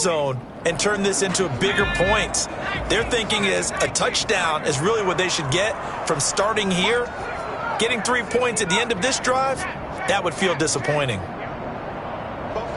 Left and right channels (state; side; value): identical; both; correlation 1.00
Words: and turn this into bigger points. Their thinking is a touchdown is really what they should get from starting here. Getting 3 points at the end of this drive, that would feel disappointing.